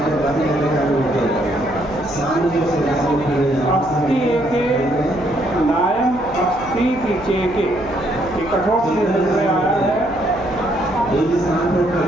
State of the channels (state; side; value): noise; left; hum, 14 dB below the sound